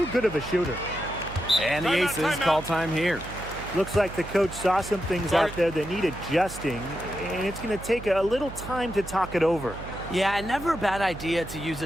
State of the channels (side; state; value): right; noise; hum, 13 dB below the sound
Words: good of a shooter. And the Aces call time here. Looks like the coach saw some things out there that need adjusting, and it's going to take a little time to talk it over. Yeah, and never a bad idea to use